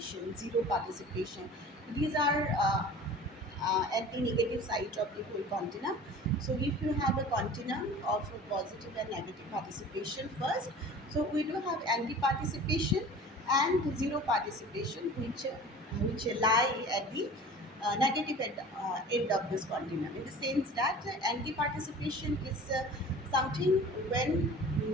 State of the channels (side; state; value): both; normal; correlation 0.41